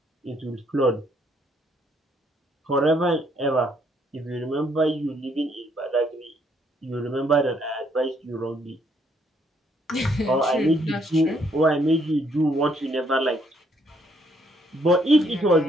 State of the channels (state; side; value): normal; both; correlation 0.69